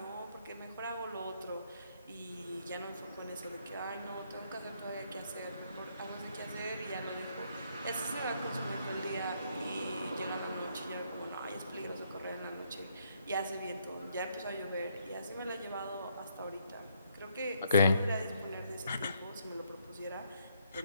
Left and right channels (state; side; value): inverted; both; correlation -0.72